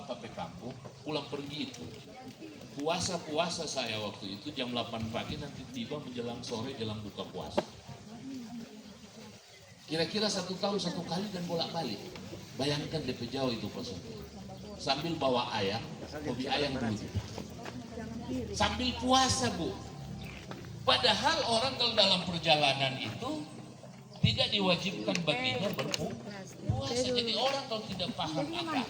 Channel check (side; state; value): both; identical; correlation 1.00